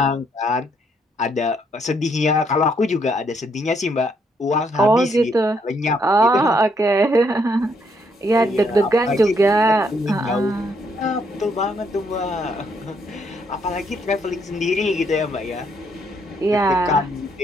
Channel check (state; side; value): normal; both; correlation 0.72